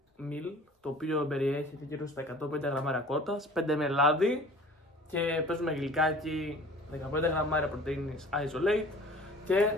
meal, το οποίο περιέχει γύρω στα 150 γραμμάρια κότας, 5 με λάδι και παίζουμε γλυκάκι, 15 γραμμάρια πρωτεΐνης isolate και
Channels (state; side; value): normal; both; correlation 0.46